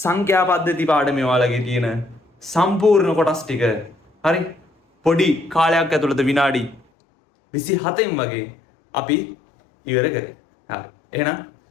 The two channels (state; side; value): drops out; right; at 6.8 s